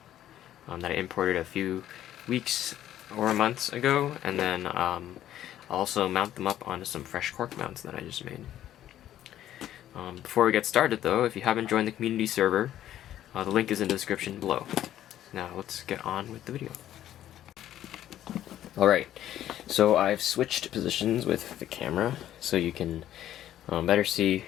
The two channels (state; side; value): quieter; right; 12.1 dB